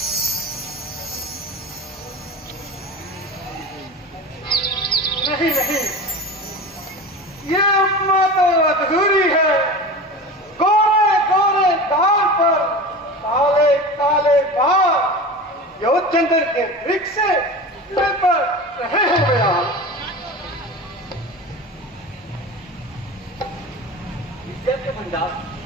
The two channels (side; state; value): both; normal; correlation 0.31